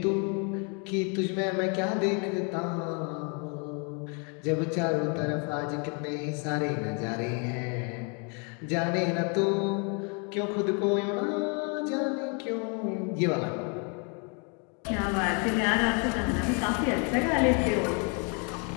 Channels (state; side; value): quieter; right; 36.5 dB